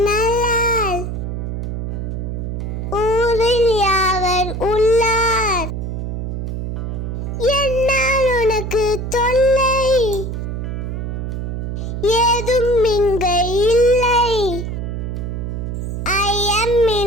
நல்லால் ஊரில் யாவர் உள்ளார். என்னால் உனக்கு தொல்லை ஏதும் இங்கு இல்லை.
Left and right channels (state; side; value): noise; right; hum, 4 dB below the sound